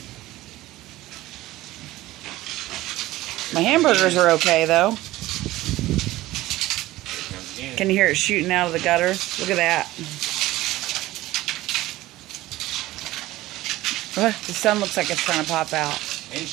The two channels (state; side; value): quieter; left; 17.1 dB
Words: My hamburgers are okay, though. Can you hear it shooting out of the gutter? Look at that. The sun looks like it's trying to pop out.